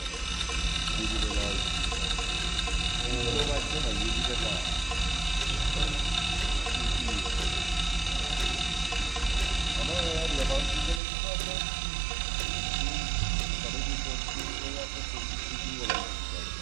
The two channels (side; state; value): left; drops out; at 11.0 s